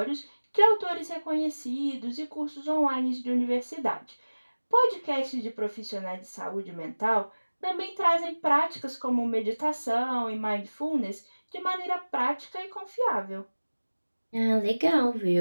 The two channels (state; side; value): inverted; both; correlation -1.00